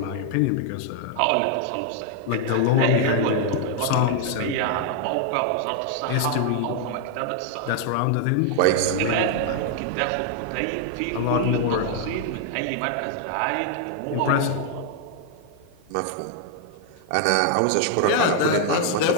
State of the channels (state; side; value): different; both; correlation 0.00